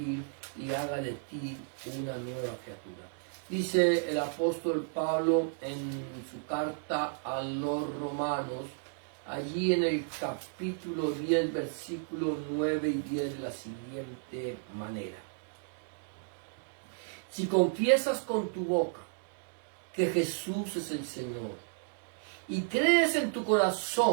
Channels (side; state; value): left; silent; digital silence